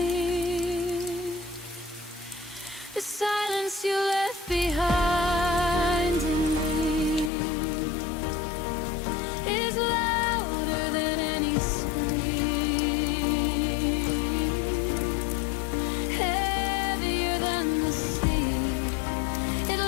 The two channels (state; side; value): drops out; right; at 7.3 s